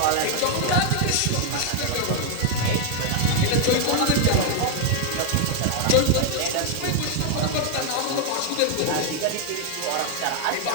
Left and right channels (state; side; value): different; both; correlation 0.00